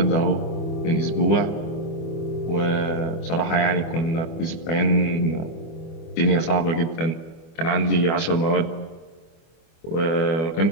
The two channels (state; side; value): late; right; 25 ms